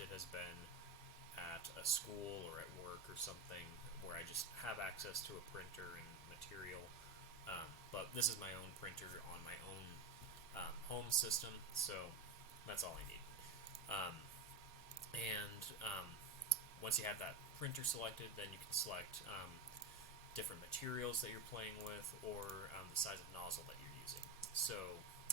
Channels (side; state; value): left; quieter; 3.4 dB